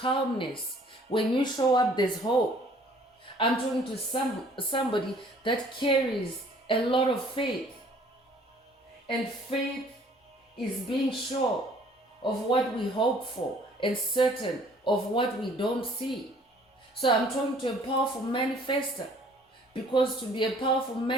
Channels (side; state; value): both; normal; correlation 0.56